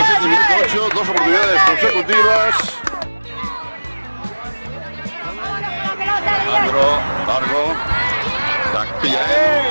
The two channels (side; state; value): both; inverted; correlation -1.00